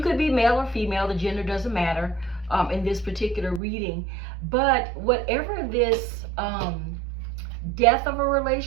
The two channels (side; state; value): left; drops out; at 3.6 s